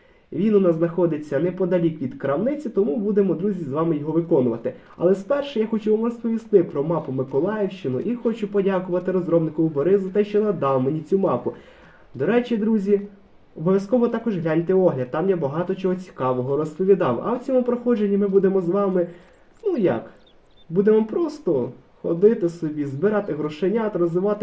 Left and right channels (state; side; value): identical; both; correlation 1.00